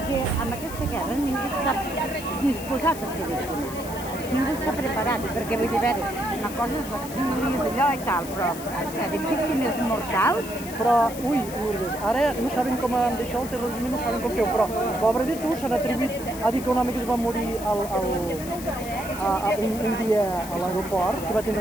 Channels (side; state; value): left; noise; hiss, 13 dB below the sound